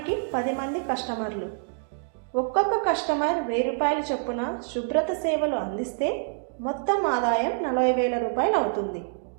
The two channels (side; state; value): left; silent; digital silence